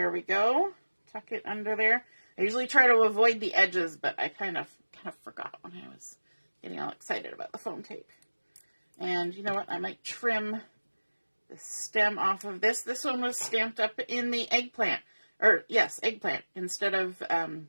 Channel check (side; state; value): both; inverted; correlation -1.00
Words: we go. Tuck it under there. I usually try to avoid the edges, but I kind of forgot when I was getting all excited about the foam tape. And you know what? I might trim the stem off of this. This one was stamped up in the eggplant. Or, yes, eggplant instead of